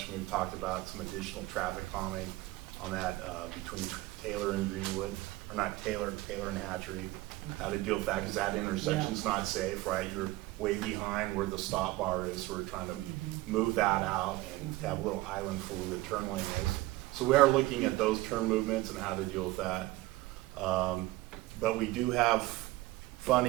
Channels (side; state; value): left; quieter; 18.9 dB